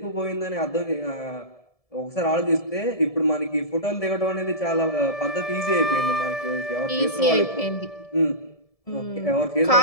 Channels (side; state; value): right; late; 1.7 ms